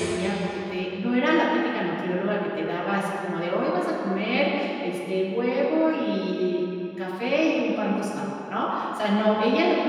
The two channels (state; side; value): identical; both; correlation 1.00